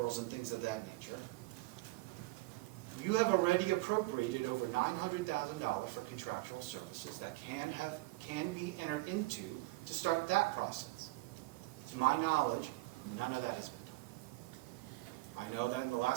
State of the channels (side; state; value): left; quieter; 21.4 dB